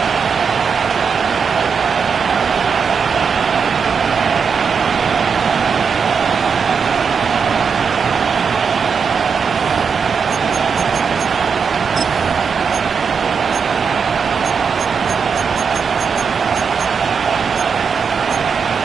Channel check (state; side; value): quieter; left; 6.0 dB